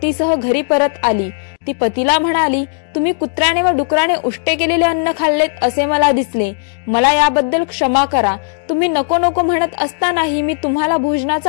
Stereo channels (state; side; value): silent; right; digital silence